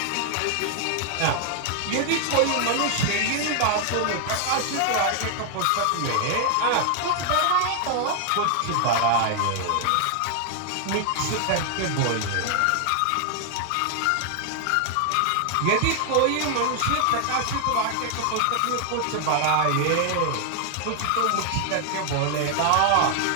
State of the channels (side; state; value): both; different; correlation 0.00